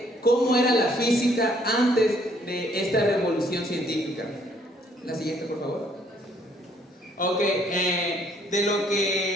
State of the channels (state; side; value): normal; both; correlation 0.65